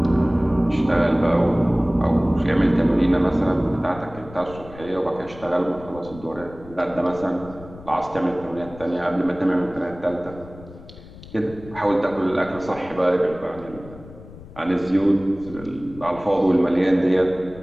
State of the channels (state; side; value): noise; left; rumble, 18 dB below the sound